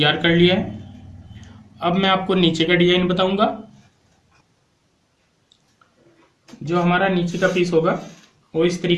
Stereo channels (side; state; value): both; identical; correlation 1.00